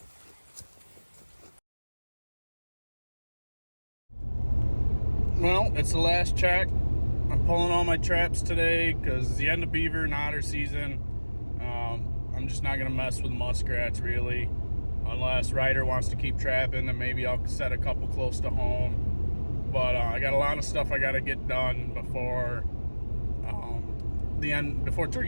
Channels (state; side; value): inverted; both; correlation -1.00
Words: Well, it's the last check. I'm pulling all my traps today because it's the end of beaver and otter season. I'm just not going to mess with muskrats really. Unless Ryder wants to keep trapping, then maybe I'll set a couple close to home. But I got a lot of stuff I got to get done before before